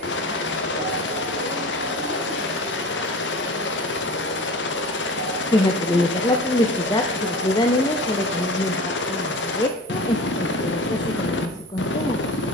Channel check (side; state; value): both; normal; correlation 0.35